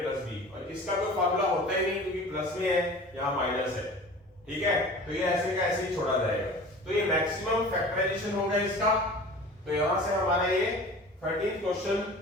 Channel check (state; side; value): normal; both; correlation 0.40